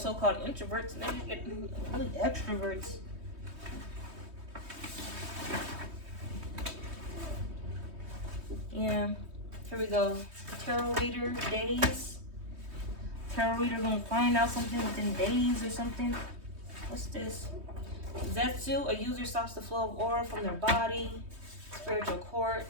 introverts and they just get really extroverts. Yeah, here we go. Tarot reader days. Tarot reader gonna find out something within days or something. What's this? Zetsu, a user stops the flow of aura from their body. Spiritual court,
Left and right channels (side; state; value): left; late; 3.2 ms